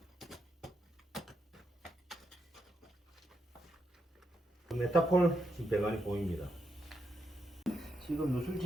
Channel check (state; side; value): normal; both; correlation 0.82